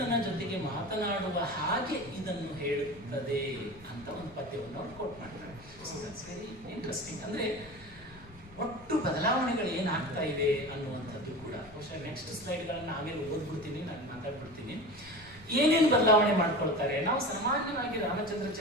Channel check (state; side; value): noise; left; rumble, 22 dB below the sound